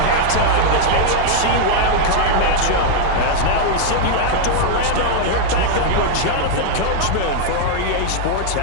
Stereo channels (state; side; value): different; both; correlation 0.00